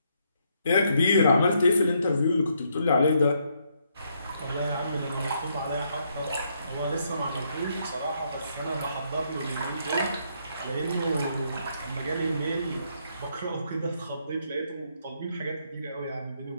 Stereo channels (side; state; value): both; inverted; correlation -0.74